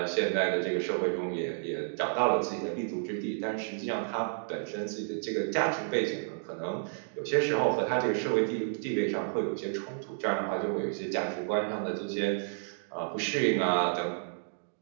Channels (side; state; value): left; silent; digital silence